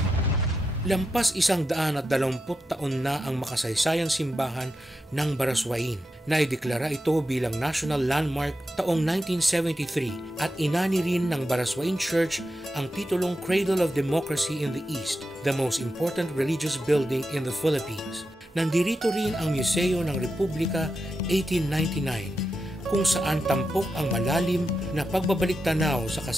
Lampas 120 taon na ang makasaysayang simbahan ng Baraswain. Naideklara ito bilang National Landmark taong 1973 at inani rin ng Baraswain Church ang titulong Cradle of Democracy in the East, the most important religious building in the Philippines. Nandirito rin ang Museo ng Republika 1899 kung saan tampok ang malalim na pagbabalik-tanaw sa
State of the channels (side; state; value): both; normal; correlation 0.88